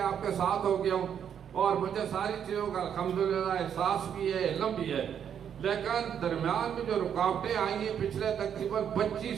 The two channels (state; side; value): quieter; left; 8.5 dB